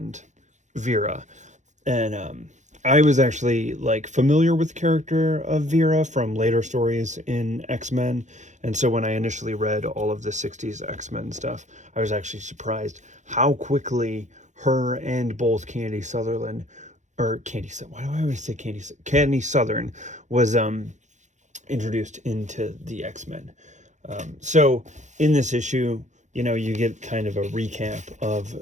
Vera. And I was actually like familiar with the character of Vera from later stories in X-Men. And so when I initially read all of the 60s X-Men stuff, I was actually surprised how quickly her and both Candy Southern was introduced into the X-Men. So in this issue, you know, you get kind of a recap of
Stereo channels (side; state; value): left; late; 0.35 ms